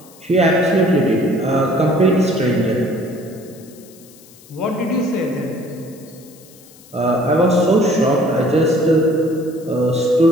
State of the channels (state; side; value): noise; left; hiss, 24 dB below the sound